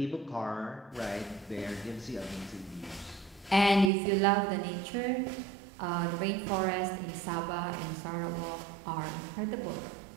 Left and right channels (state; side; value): drops out; left; at 3.9 s